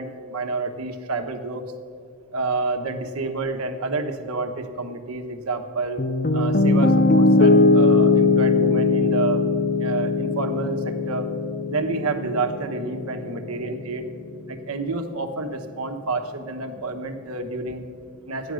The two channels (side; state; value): both; normal; correlation 0.07